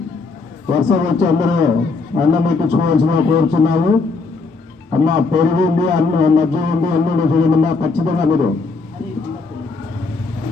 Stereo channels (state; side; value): quieter; right; 4.0 dB